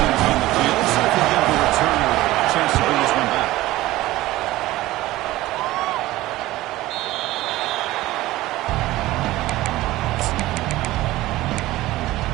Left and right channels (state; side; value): quieter; left; 17.2 dB